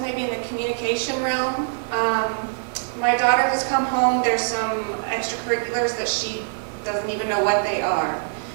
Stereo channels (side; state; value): left; silent; 63 dB below the other